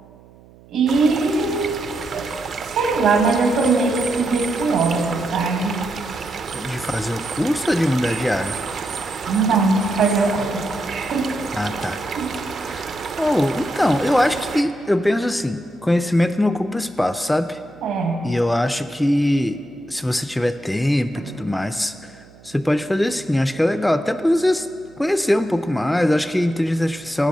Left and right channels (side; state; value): right; noise; hum, 24 dB below the sound